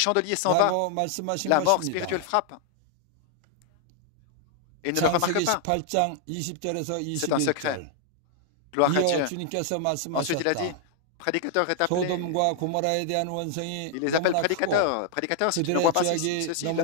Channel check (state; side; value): different; both; correlation 0.00